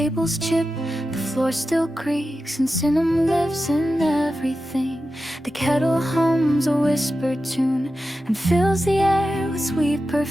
chip, the floor still creaks, and cinnamon lives in everything. The kettle hums a whispered tune and fills the air with sweet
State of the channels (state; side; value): normal; both; correlation 0.92